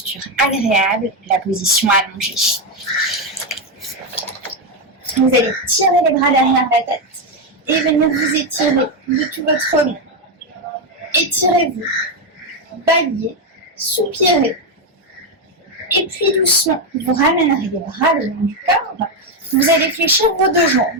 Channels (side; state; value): both; normal; correlation 0.06